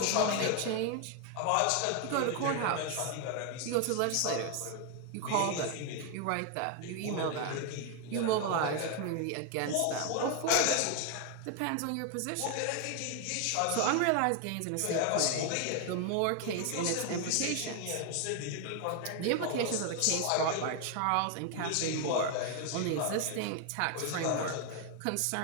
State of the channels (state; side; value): different; both; correlation 0.01